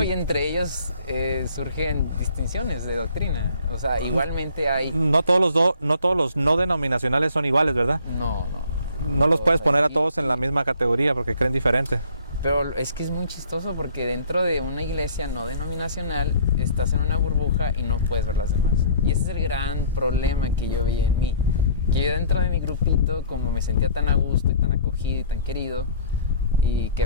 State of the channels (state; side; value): inverted; both; correlation -0.54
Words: y entre ellos surgen distinciones de doctrina. O sea, igualmente hay... No todos los no denominacionales son iguales, ¿verdad? No. No los puedes poner a Y- todos en la misma categoría porque creen diferente. Pero es que es muy chistoso porque dentro de una iglesia no denominacional estás en una burbuja y no puedes ver las demás. Y ese es el gran problema que yo veía en mí. Que yo dentro de mi grupito, como me sentía tan a gusto y tan acogido y tan querido, y que